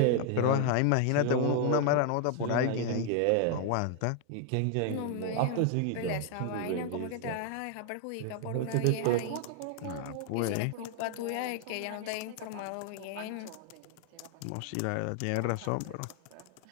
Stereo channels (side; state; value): both; different; correlation 0.00